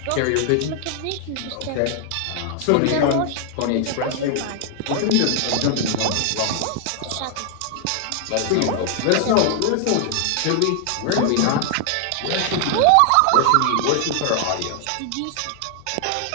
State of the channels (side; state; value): both; different; correlation 0.00